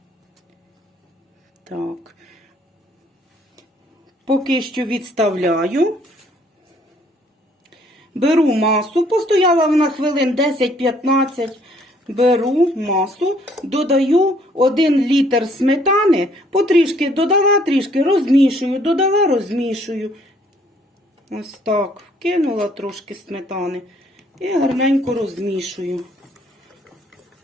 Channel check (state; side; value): normal; both; correlation 0.63